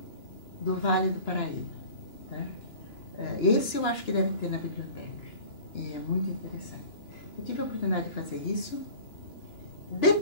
do Vale do Paraíba. Tá? Esse eu acho que deve ter na biblioteca. E é muito interessante. Eu tive a oportunidade de fazer isso.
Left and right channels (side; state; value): right; late; 2.9 ms